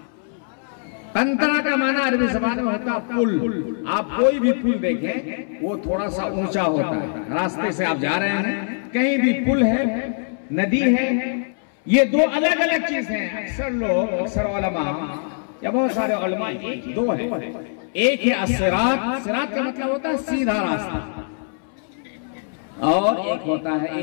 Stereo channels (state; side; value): silent; right; 64 dB below the other